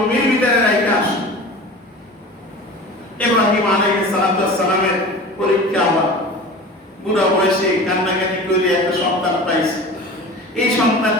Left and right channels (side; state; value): both; normal; correlation 0.36